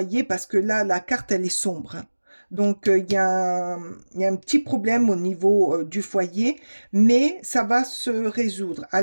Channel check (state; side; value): inverted; both; correlation -1.00